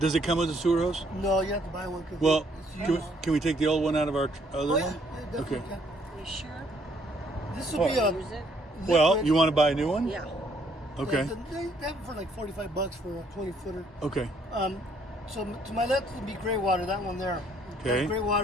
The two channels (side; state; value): both; normal; correlation 0.66